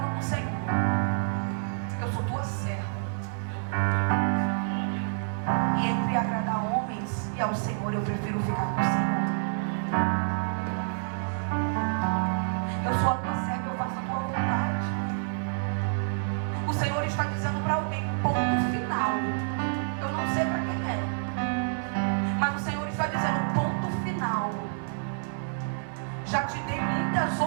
com o Senhor: eu sou tua serva, e entre agradar homens e ao Senhor, eu prefiro ficar com o Senhor. Eu sou a tua serva, eu faço a tua vontade. O Senhor está dizendo para alguém, ponto final. Eu não sei para quem é, mas o Senhor está dizendo, ponto final. Já te dei muitas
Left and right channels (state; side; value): silent; left; digital silence